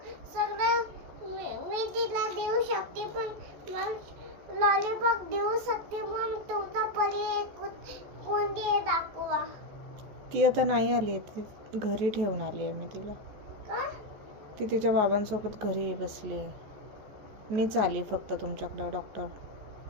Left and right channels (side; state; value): left; late; 14 ms